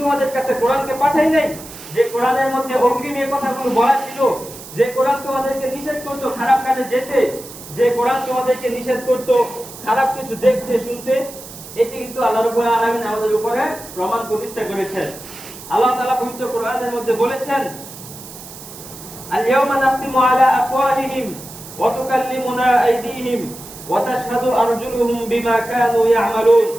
তোমাদের কাছে কোরআনকে পাঠাই নাই, যে কোরআনের মধ্যে অগ্রিম এই কথাগুলো বলা ছিল, যে কোরআন তোমাদেরকে নিষেধ করত খারাপ কাজে যেতে, যে কোরআন তোমাদেরকে নিষেধ করত খারাপ কিছু দেখতে শুনতে। এটি কিন্তু আল্লাহ রাব্বুল আলামিন আমাদের উপরে প্রমাণ প্রতিষ্ঠা করেছেন। আল্লাহ তাআলা পবিত্র কোরআনের মধ্যে বলেছেন, আল-ইয়াওমা নাখতিমু আলা আফওয়াহিহিম ওয়া তুকাল্লিমুনা আইদিহিম ওয়া তাশহাদু আরজুলুহুম বিমা কানু ইয়ামালুন।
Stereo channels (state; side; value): noise; right; hiss, 15 dB below the sound